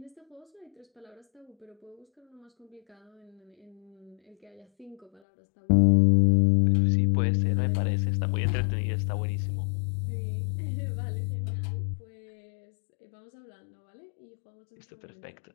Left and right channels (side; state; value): right; drops out; at 5.2 s